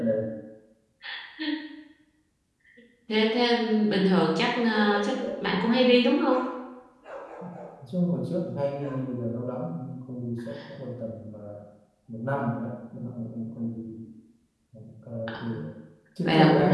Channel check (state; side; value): identical; both; correlation 1.00